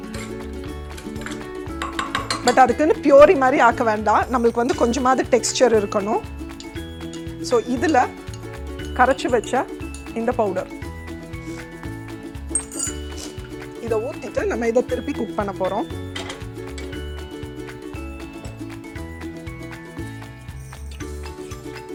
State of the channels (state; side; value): identical; both; correlation 1.00